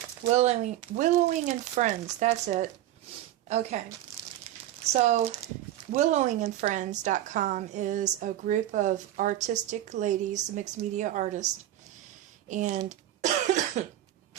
and Friends. That's it. Okay. So, willowingandfriends.com is a group of artistic ladies, mixed media artists, and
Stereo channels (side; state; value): left; quieter; 13.4 dB